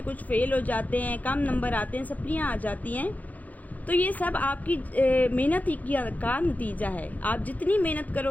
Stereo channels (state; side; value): late; right; 0.078 ms